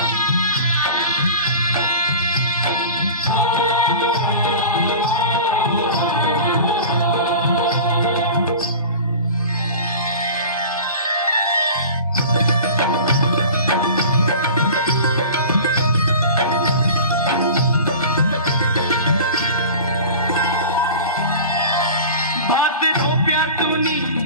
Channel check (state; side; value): inverted; both; correlation -0.36